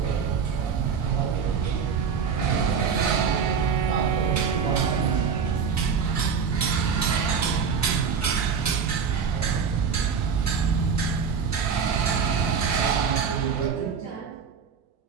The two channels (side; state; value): left; quieter; 6.4 dB